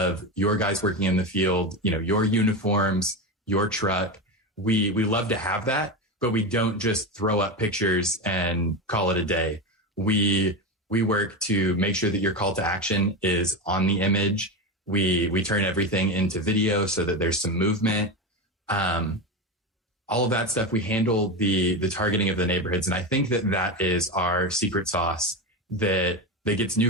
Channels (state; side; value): normal; both; correlation 0.18